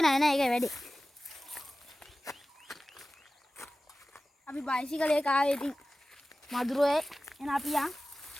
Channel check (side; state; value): both; normal; correlation 0.96